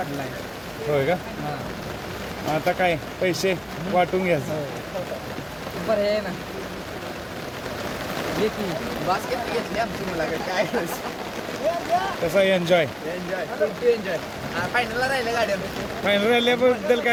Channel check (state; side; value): identical; both; correlation 1.00